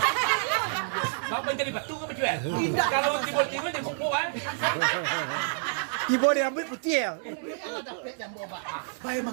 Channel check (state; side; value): silent; left; digital silence